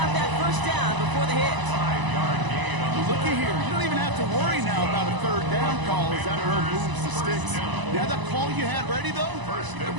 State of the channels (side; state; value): left; late; 1.0 ms